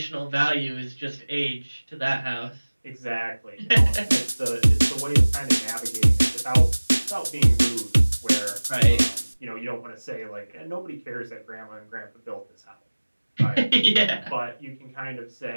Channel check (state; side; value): inverted; both; correlation -1.00